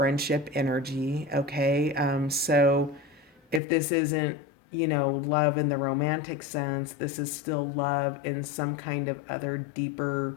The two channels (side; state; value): right; drops out; at 3.6 s